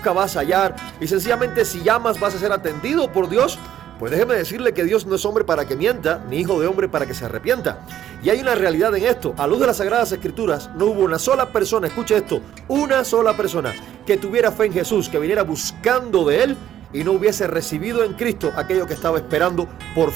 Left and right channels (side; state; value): left; quieter; 11.1 dB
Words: vas a hallar, y sencillamente si llamas vas a ser atendido por Dios. Pues déjeme decirle que Dios no es hombre para que mienta, ni hijo de hombre para que se arrepienta. Y hay una realidad en esto. A luz de las Sagradas Escrituras, no hubo una sola persona, escuche esto, una sola persona que tuviera fe en Jesús, que viniera buscando de Él y no hubiese recibido en Cristo aquello que estaba esperando por